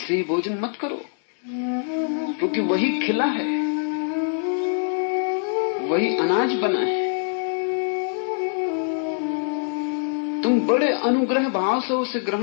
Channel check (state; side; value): silent; right; digital silence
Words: ही भोजन मत करो, क्योंकि वही खिला है, वही अनाज बना है। तुम बड़े अनुग्रह भाव से उसे